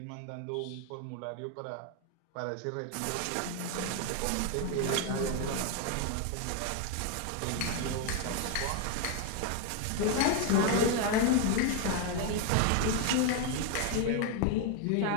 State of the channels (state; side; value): different; both; correlation 0.01